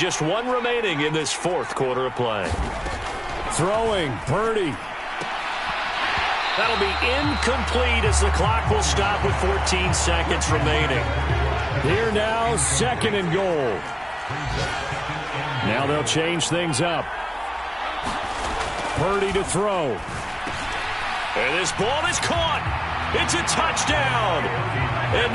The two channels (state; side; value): identical; both; correlation 1.00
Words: 1 remaining in this 4th quarter of play. Throwing, Purdy. That'll be incomplete as the clock will stop with 14 seconds remaining. Here now, 2nd and goal. Now they'll change things up. Purdy to throw. And this ball is caught. It's a touchdown. And